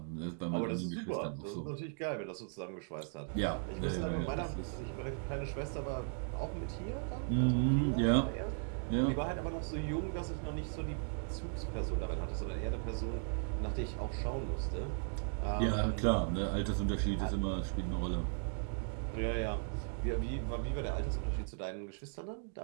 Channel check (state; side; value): silent; left; 53 dB below the other